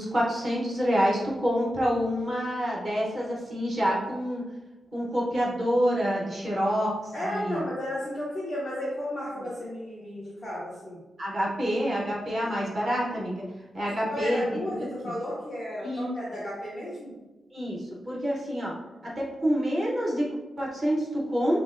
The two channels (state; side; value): normal; both; correlation 0.91